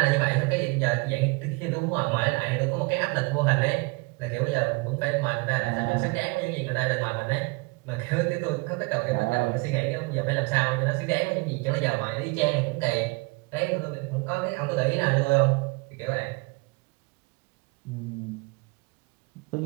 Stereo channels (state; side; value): quieter; left; 27.1 dB